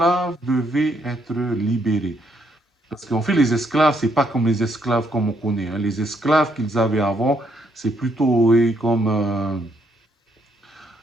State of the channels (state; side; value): normal; both; correlation 0.73